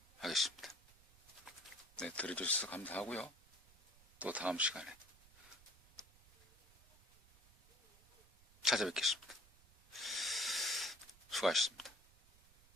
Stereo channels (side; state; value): right; noise; rumble, 26 dB below the sound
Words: 하겠습니다. 네, 들어주셔서 감사하고요. 또 다음 시간에 찾아뵙겠습니다. 수고하셨습니다.